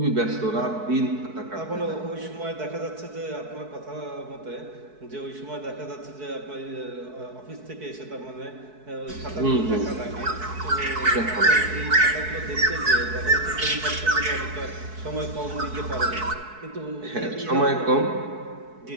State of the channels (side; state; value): left; late; 4.6 ms